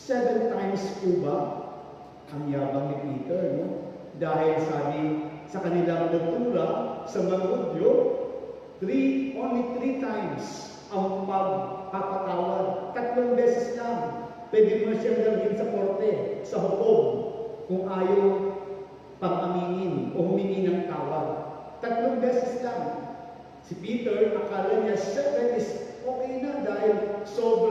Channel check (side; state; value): both; identical; correlation 1.00